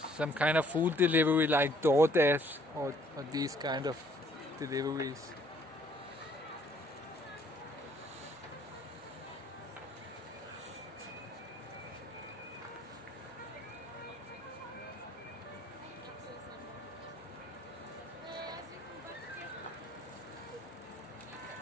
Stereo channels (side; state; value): both; normal; correlation 0.62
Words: some kind of food delivery like DoorDash or these kind of deliveries.